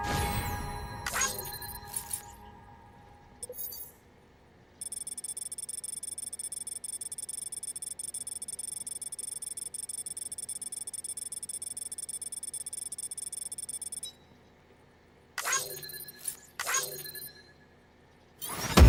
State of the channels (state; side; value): identical; both; correlation 1.00